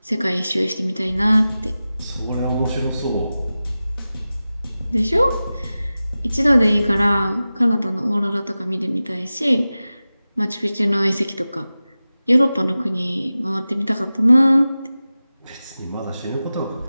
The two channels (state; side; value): inverted; both; correlation -0.95